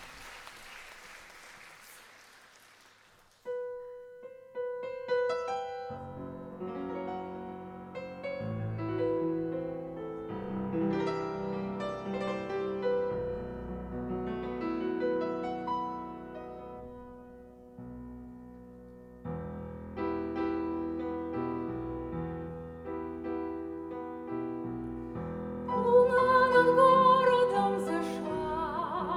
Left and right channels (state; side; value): identical; both; correlation 1.00